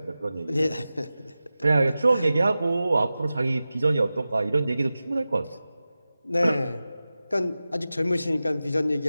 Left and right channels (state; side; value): inverted; both; correlation -0.95